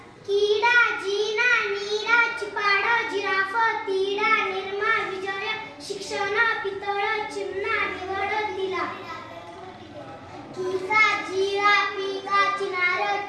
किडा जिना नीरा चिपाड जिराफ तिडा निर्मा विजय शिक्षण पितळ चिमणा निवड दिला किसा जिरा पिका चिनार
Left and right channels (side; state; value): both; identical; correlation 1.00